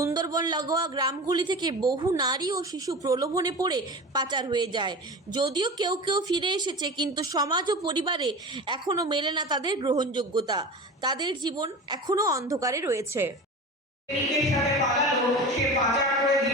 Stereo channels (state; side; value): normal; both; correlation 0.31